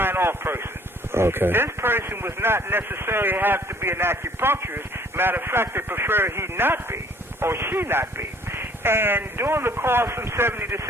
person. Okay. This person was not necessarily have to be an acupuncturist. Matter of fact, they preferred he not be, or she not be. And during the course from 70 to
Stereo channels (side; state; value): both; normal; correlation 0.57